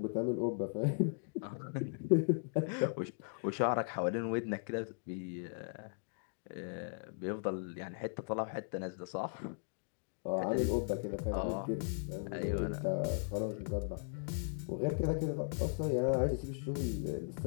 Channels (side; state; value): right; silent; digital silence